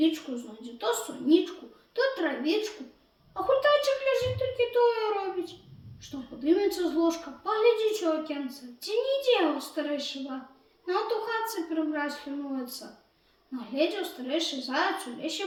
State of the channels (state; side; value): identical; both; correlation 1.00